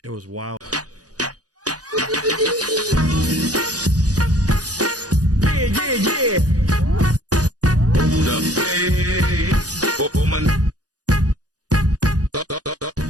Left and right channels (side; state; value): left; late; 0.68 ms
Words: wild. Yeah, yeah, yeah. Hold up, hey, woman.